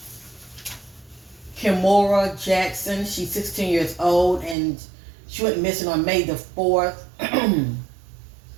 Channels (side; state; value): left; drops out; at 4.5 s